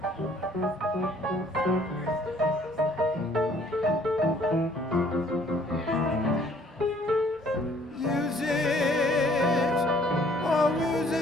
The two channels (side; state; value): both; normal; correlation 0.59